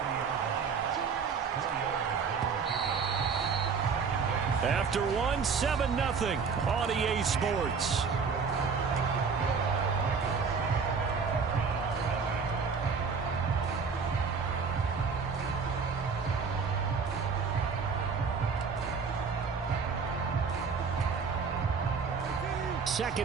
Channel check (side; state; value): left; quieter; 5.5 dB